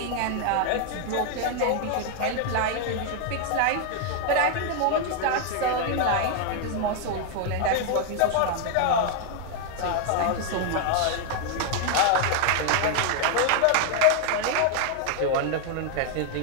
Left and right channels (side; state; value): both; different; correlation 0.00